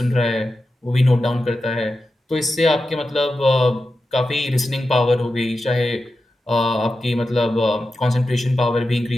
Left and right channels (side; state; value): both; normal; correlation 0.91